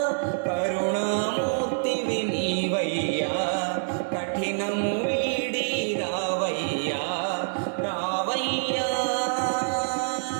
కరుణామూర్తివి నీవయ్యా కఠినము వీడి రావయ్యా రావయ్యా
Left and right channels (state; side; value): silent; left; digital silence